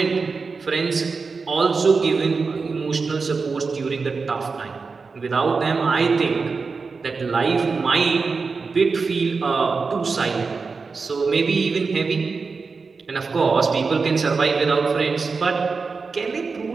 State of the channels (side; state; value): left; quieter; 4.6 dB